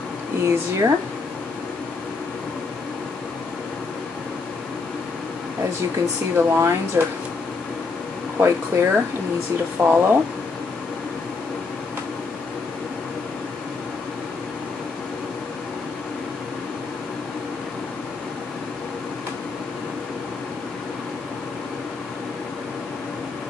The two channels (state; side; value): quieter; right; 4.3 dB